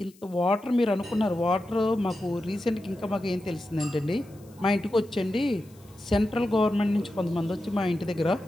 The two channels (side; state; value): left; noise; hiss, 28 dB below the sound